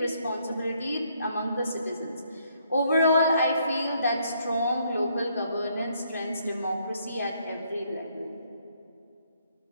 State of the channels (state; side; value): inverted; both; correlation -0.70